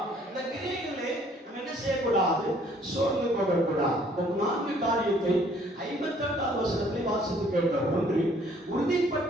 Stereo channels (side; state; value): both; normal; correlation 0.60